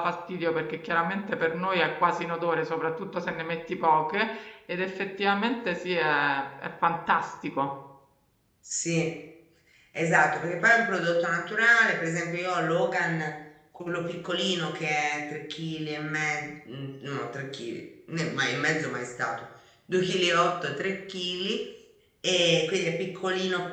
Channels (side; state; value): both; identical; correlation 1.00